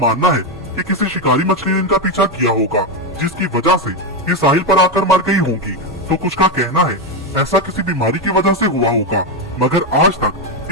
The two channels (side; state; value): both; normal; correlation 0.08